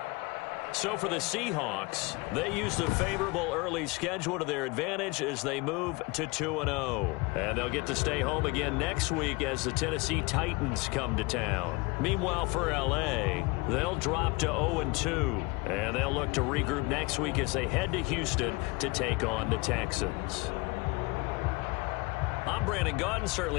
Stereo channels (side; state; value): right; quieter; 26.0 dB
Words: So for the Seahawks, they used a favorable early schedule to their advantage as they move to 2-0. And they'll get to stay home again next week as the Tennessee Titans come to town. Meanwhile, for L.A., they'll drop to 0-2. And they'll look to regroup next week as they head to Houston to take on the Texans. I'm Brandon Gaudin.